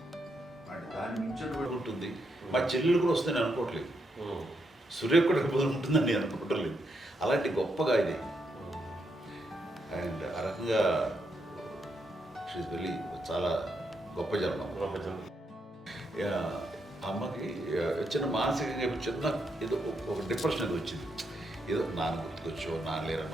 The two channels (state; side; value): normal; both; correlation 0.80